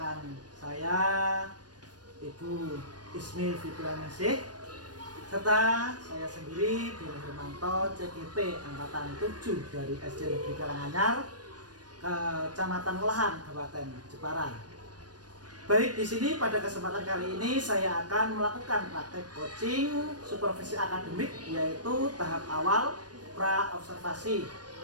saya Ibu Ismi Fitrianingsih serta saya sendiri Doni Hermanto CGP Angkatan 7 dari SD Negeri Karanganyar Kecamatan Melahan Kabupaten Jepara. Baik, di sini pada kesempatan kali ini saya akan melakukan praktek coaching supervisi akademik yaitu tahap awal pra observasi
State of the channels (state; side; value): late; left; 0.69 ms